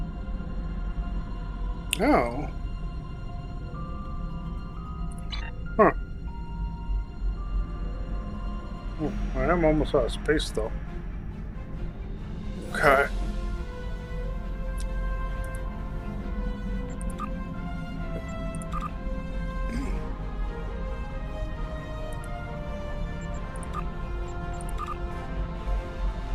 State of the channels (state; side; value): identical; both; correlation 1.00